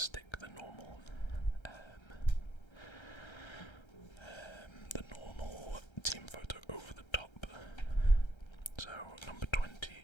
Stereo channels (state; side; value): late; right; 1.3 ms